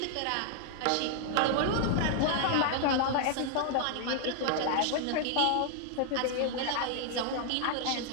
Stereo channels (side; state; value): both; different; correlation 0.00